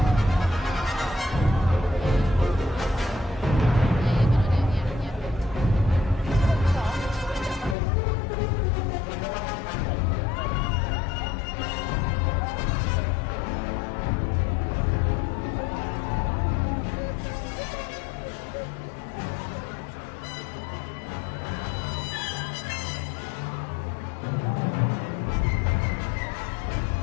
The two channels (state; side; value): drops out; right; at 7.8 s